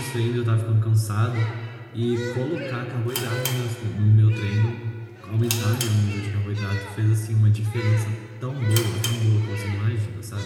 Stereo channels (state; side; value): identical; both; correlation 1.00